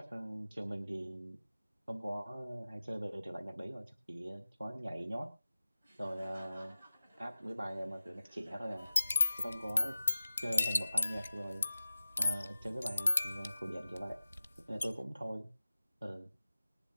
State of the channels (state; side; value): inverted; both; correlation -0.96